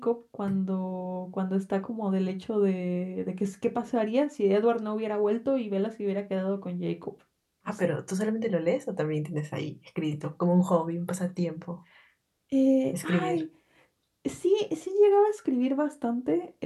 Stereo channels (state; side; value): identical; both; correlation 1.00